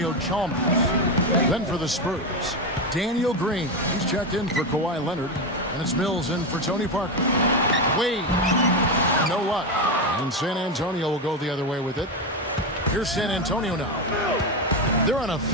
Chalmers. Then for the Spurs, Daniel Green. He's checked in for Kawhi Leonard. And it's Mills in for Tony Parker. Wade, no luck. And San Antonio will go the other way with it. Here's San Antonio now. They're on a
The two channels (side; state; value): both; normal; correlation 0.12